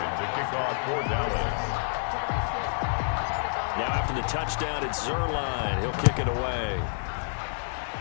to kick off for Dallas. Now after the touchdown, it's Zuerlein. He'll kick it away.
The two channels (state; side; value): silent; right; digital silence